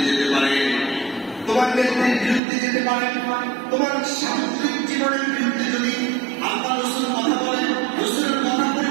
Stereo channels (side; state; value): left; drops out; at 2.4 s